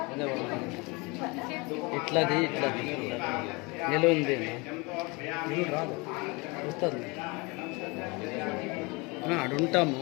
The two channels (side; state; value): right; quieter; 27.1 dB